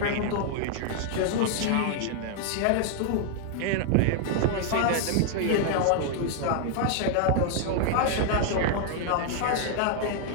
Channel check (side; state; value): both; different; correlation 0.00